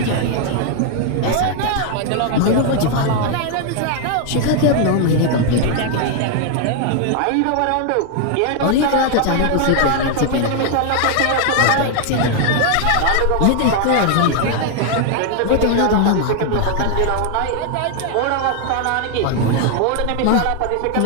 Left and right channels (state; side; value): different; both; correlation 0.00